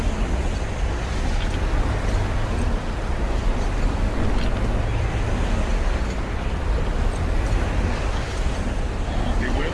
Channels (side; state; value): both; identical; correlation 1.00